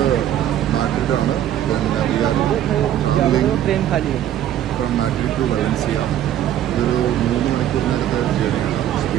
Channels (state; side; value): quieter; left; 11.4 dB